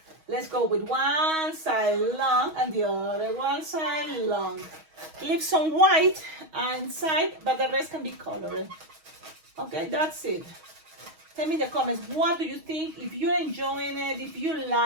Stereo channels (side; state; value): left; late; 6.3 ms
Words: let's go with one side long and the other one side long. Leave some white inside, but the rest can be colored. Okay, that's it. Tell me in the comments, what do you think? If you're enjoying it, if you